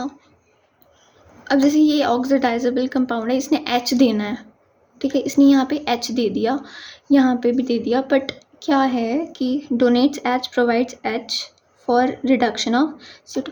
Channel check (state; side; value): identical; both; correlation 1.00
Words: अब जैसे ये ऑक्सीडाइजेबल कंपाउंड है, इसने H देना है। ठीक है, इसने यहाँ पे H दे दिया, यहाँ पे भी दे दिया, बट क्या है कि donates H provides H for reduction of CO2।